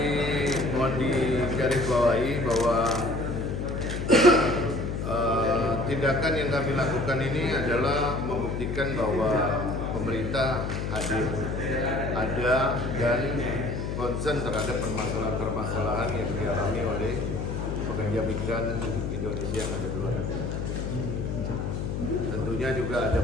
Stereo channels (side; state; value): left; noise; hum, 3 dB below the sound